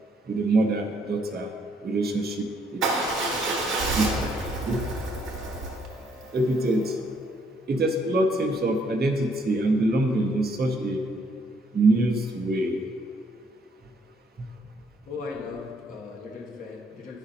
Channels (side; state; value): both; normal; correlation 0.69